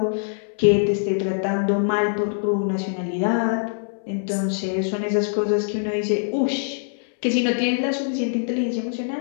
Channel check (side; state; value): right; silent; 63 dB below the other